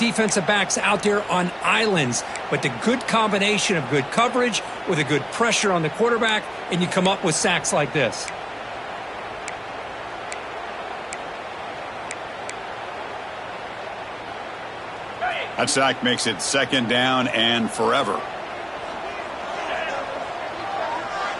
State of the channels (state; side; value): identical; both; correlation 1.00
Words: backs out there on islands. But the good combination of good coverage with a good pressure on the quarterback, and you come up with sacks like this. That sack makes it second down and forever.